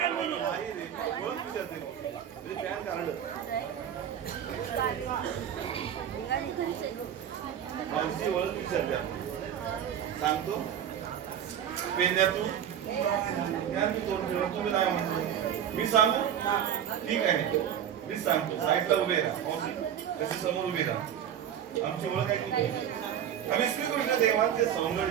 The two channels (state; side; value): quieter; left; 9.6 dB